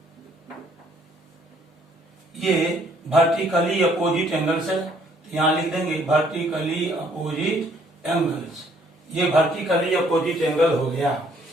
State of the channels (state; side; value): normal; both; correlation 0.64